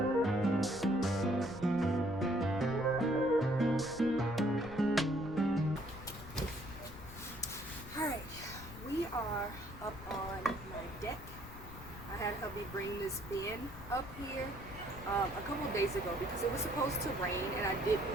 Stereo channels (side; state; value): left; noise; rumble, 14 dB below the sound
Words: Alright, we are up on my deck. I had hubby bring this bin up here a couple of days ago because it was supposed to rain and I